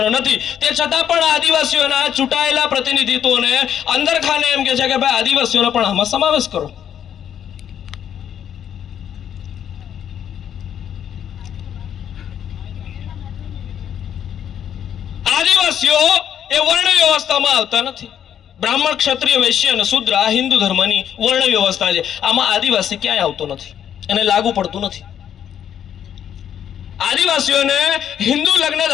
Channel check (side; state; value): right; quieter; 9.5 dB